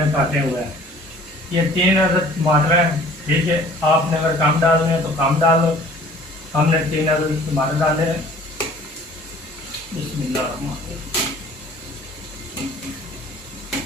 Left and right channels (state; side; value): normal; both; correlation 0.50